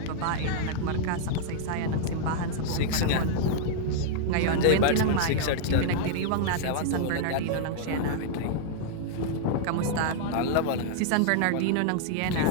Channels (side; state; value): both; different; correlation -0.01